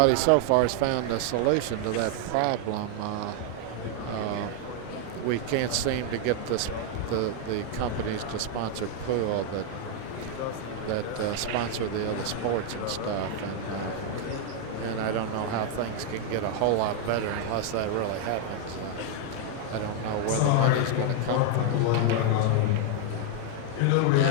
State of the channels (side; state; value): both; different; correlation 0.00